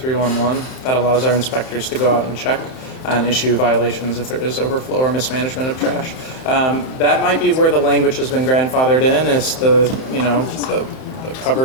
That allows our inspectors to go out and check and issue violations if there is overflow or mismanagement of trash. That might be where the language has been grandfathered in, is the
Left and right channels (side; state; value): right; late; 31 ms